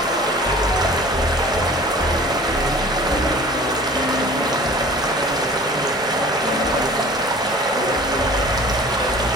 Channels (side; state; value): both; normal; correlation 0.45